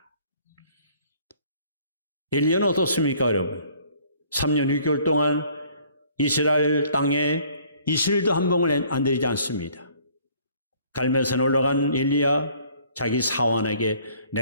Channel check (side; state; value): both; inverted; correlation -0.58